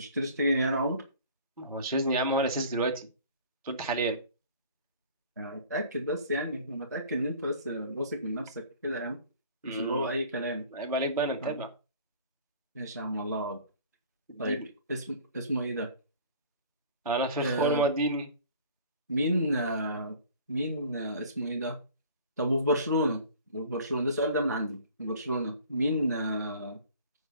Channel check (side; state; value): both; inverted; correlation -0.47